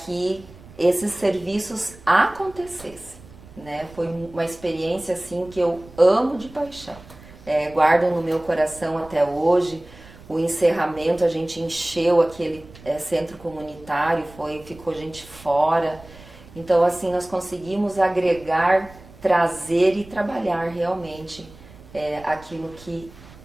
esses serviços acontecessem, né? Foi uma experiência assim que eu amo de paixão, guardo no meu coração até hoje. O encerramento, a gente encheu aquele centro comunitário, ficou gente fora. Então assim, nós conseguimos agregar, trazer e trabalhar realmente aquilo que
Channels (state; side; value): noise; right; rumble, 21 dB below the sound